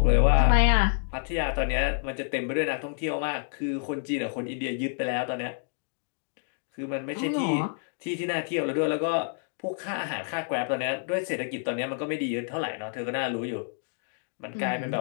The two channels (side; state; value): right; silent; digital silence